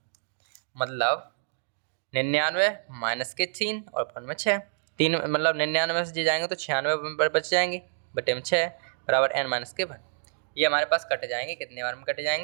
मतलब 99 माइनस के 3 और अपॉन में 6, 3 मतलब 99 से जाएंगे तो 96 बच जाएंगे, बटे में 6 बराबर N-1। ये हमारे पास कट जाएंगे, कितने बार में कट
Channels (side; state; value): left; silent; digital silence